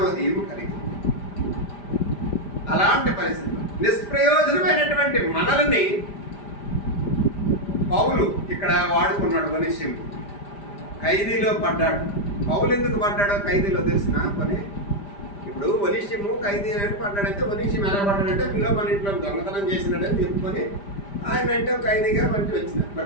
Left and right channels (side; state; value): right; late; 5.0 ms